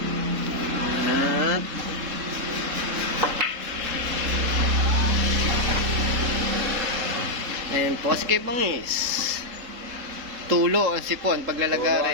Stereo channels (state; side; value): late; left; 3.7 ms